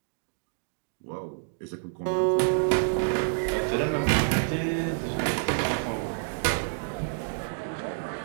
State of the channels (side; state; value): left; silent; digital silence